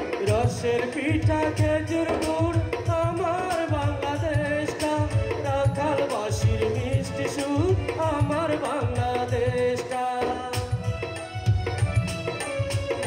রসের পিঠা খেজুর গুড় আমার বাংলাদেশটা, রাখালবাসীর মিষ্টি সুর আমার বাংলাদেশটা,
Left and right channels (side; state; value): both; identical; correlation 1.00